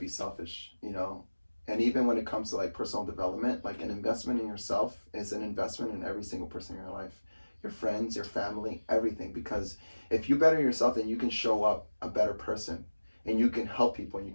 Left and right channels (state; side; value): inverted; both; correlation -1.00